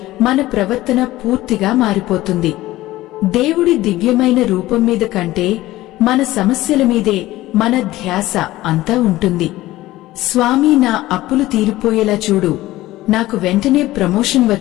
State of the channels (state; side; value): quieter; right; 16.7 dB